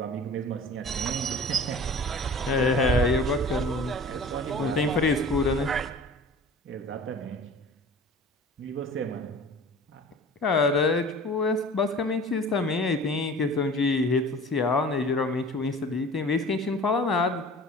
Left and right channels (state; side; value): normal; both; correlation 0.42